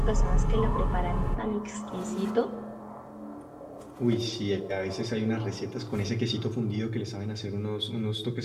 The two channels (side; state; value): both; identical; correlation 1.00